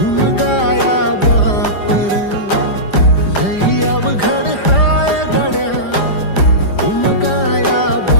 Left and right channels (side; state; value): right; late; 5.0 ms